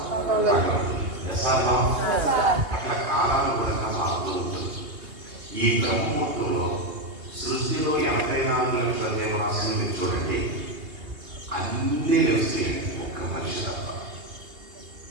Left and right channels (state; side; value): late; left; 2.8 ms